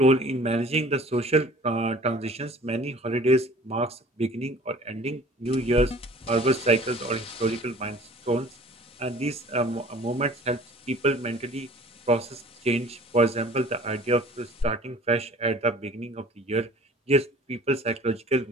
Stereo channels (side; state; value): both; normal; correlation 0.48